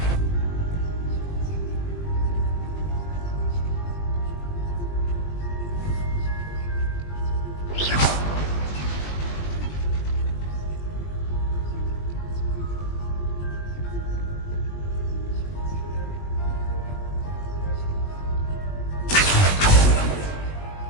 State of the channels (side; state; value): right; late; 20 ms